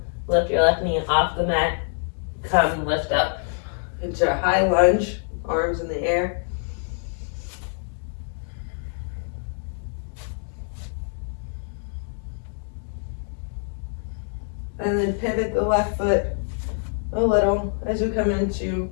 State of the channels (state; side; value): silent; right; digital silence